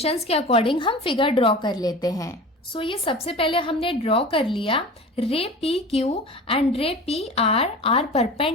के अकॉर्डिंग हम फिगर ड्रॉ कर लेते हैं। सो ये सबसे पहले हमने ड्रॉ कर लिया, ray P Q and ray P R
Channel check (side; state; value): both; normal; correlation 0.35